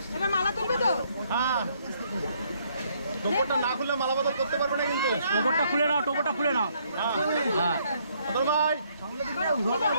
এবার মালা তুলবে তো? হ্যাঁ, টোপরটা না খুলে মালা বদল করতে পারবে না কিন্তু। টোপরটা খুলে নাও, টোপরটা খুলে নাও। হ্যাঁ হ্যাঁ, অতল ভাই,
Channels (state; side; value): inverted; both; correlation -0.69